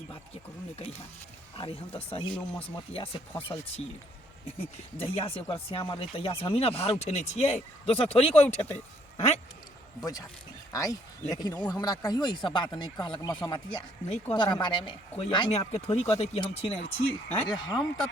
बात के करू ने कहिया अरे हम तो सही नो मसमतिया से फसल छी जहिया से ओकर श्याम रहे तहिया से हम ही ना भार उठेने छिए दोसर थोड़ी कोई उठेते हैं बुझा आइ लेकिन वो हमरा कहियो ई सब बात नहीं कहलक मसमतिया नहीं तोरा कहता बारे में। कोई आँय? अपने आपके थोड़ी कहते कि हम छीने छी हैं? अरे हम तो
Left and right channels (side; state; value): both; normal; correlation 0.66